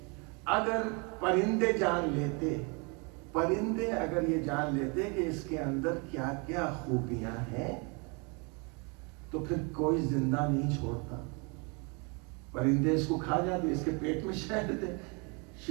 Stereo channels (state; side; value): quieter; left; 32.2 dB